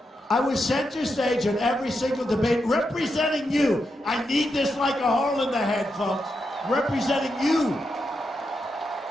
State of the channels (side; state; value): both; normal; correlation 0.85